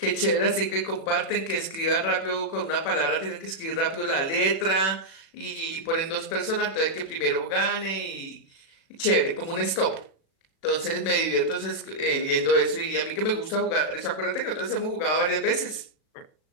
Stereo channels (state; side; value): late; right; 37 ms